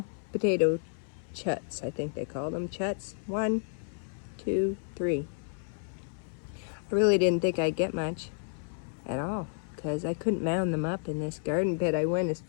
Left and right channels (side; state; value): right; silent; 57 dB below the other